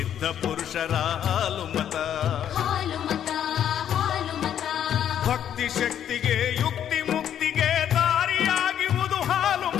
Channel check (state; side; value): quieter; right; 9.9 dB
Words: ಪುರುಷರ ಹಾಲು ಮತ. ಭಕ್ತಿ ಶಕ್ತಿಗೆ ಯುಕ್ತಿ ಮುಕ್ತಿಗೆ ದಾರಿಯಾಗಿರುವುದು ಹಾಲು